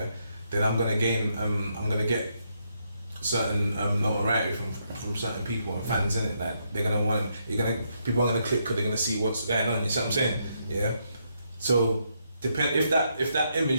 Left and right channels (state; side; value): inverted; both; correlation -0.77